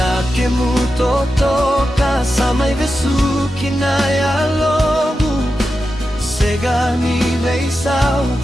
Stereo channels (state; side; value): normal; both; correlation 0.90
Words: kemu totoka Samai vesuki na ya lobu Sega ni veisau